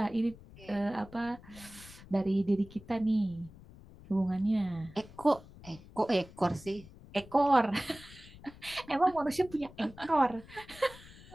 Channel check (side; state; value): left; noise; rumble, 20 dB below the sound